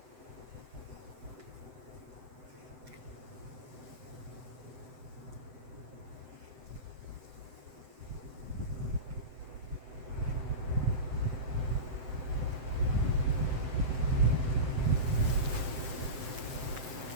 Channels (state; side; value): late; left; 7.7 ms